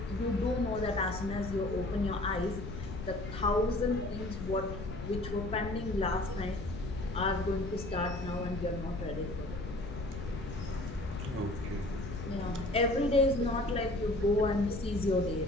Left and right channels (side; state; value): left; noise; rumble, 8 dB below the sound